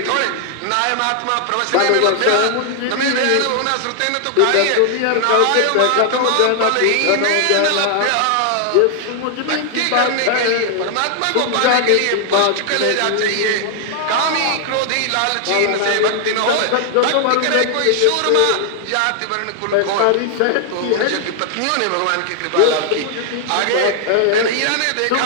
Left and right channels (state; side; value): different; both; correlation 0.00